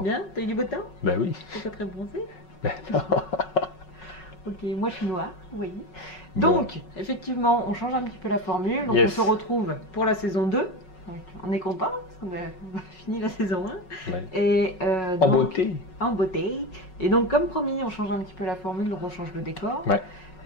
Bien? T'as eu du beau temps? Ben oui. T'es pas très bronzé? Ben non. Ok, moi je suis noire, oui. Bon. Donc, effectivement, on change un petit peu la formule. Donc, Yes. on se retrouve pour la saison 2. Donc, on est content parce qu'on a fini la saison 1. Ouais. Et, En donc, beauté. En beauté. Et donc, comme promis, on change un petit peu la formule, donc on change le décor. Ouais.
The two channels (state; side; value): late; right; 5.4 ms